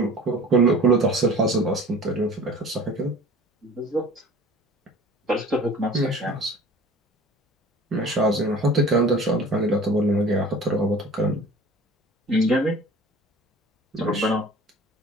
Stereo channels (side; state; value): both; normal; correlation 0.43